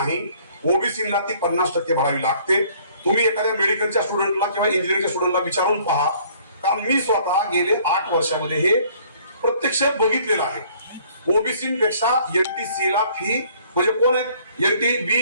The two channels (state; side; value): inverted; both; correlation -0.58